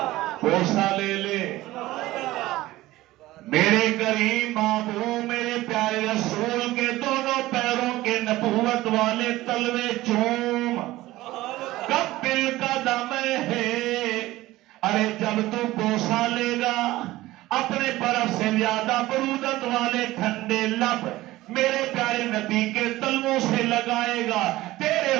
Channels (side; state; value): left; quieter; 17.3 dB